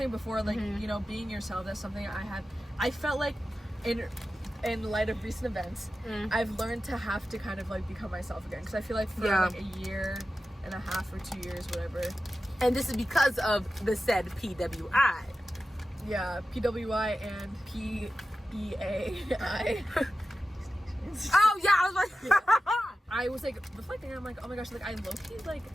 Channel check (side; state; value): both; normal; correlation 0.93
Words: before, like you know, being yourself. That's something I felt like in light of recent events, I've learned to have to kind of like become myself again, because I feel like for like a year and a half or 2 years, whatever. And this is because of the said PWI. Yeah, PWI and PEAI. Oh yeah, I was like, I was like reflecting, and I'm like, oh my gosh, like I low-key, like